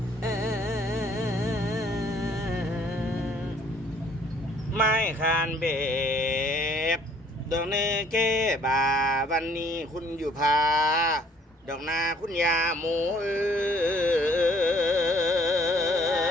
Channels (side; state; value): both; normal; correlation 0.59